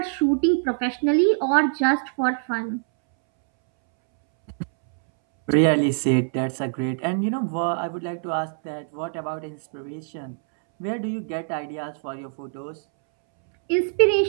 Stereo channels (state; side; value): silent; left; 63 dB below the other